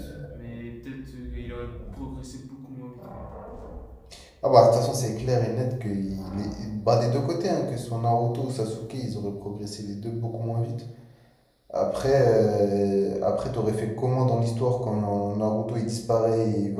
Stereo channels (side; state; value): both; identical; correlation 1.00